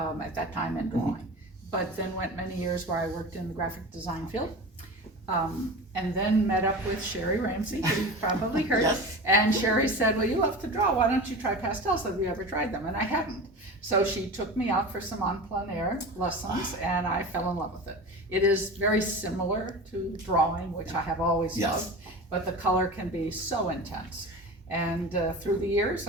that time and drawing, but then went many years where I worked in the graphic design field. And then met up with Sherry Ramsey, who you've probably heard. Yes. And Sherry said, well, you love to draw, why don't you try pastels? Have you ever tried them? And I hadn't. So she took me out for some en plein air lessons, and I fell in love with it. It is very similar to drawing, which I have always loved, but the color can be so intense. And through the years,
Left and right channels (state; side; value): normal; both; correlation 0.31